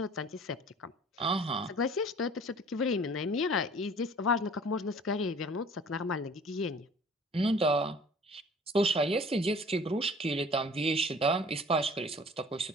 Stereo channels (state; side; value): normal; both; correlation 0.49